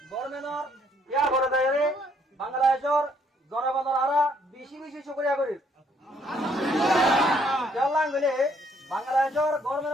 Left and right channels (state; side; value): normal; both; correlation 0.67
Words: গভর্নমেন্টর ইয়া করে দেয় বাংলাদেশের জনগণের আরা বেশি বেশি শুকরিয়া করি জানলাম গেলে বাংলাদেশের